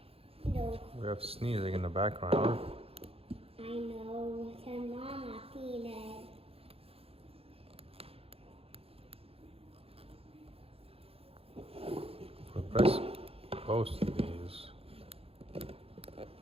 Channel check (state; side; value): late; left; 0.28 ms